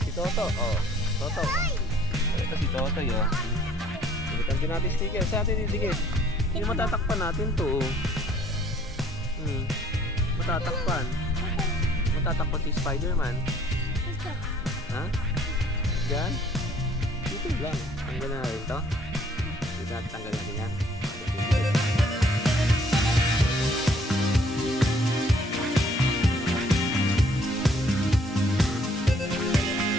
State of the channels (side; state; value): both; normal; correlation 0.60